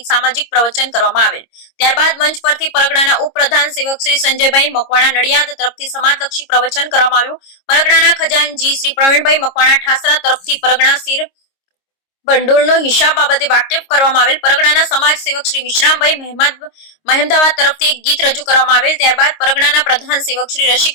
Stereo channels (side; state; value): right; late; 26 ms